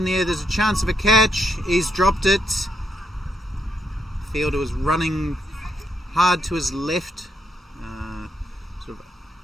the air, there's a chance of a catch. He's dropped it. Fielder was running hard to his left, sort of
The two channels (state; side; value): normal; both; correlation 0.78